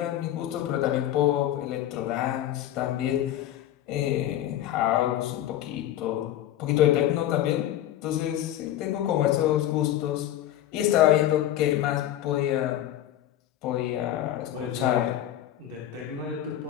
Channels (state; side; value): quieter; right; 12.5 dB